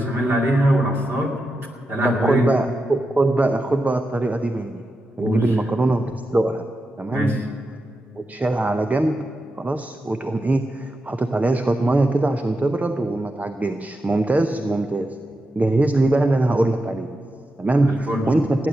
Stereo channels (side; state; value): both; normal; correlation 0.89